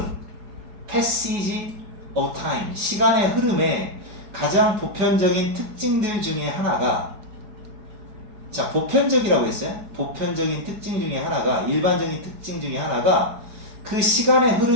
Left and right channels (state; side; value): late; left; 4.8 ms